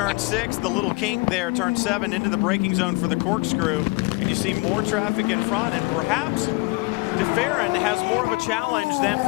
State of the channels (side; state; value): right; quieter; 26.4 dB